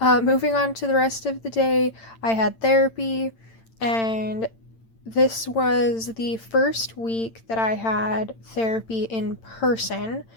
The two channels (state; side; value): late; right; 8.9 ms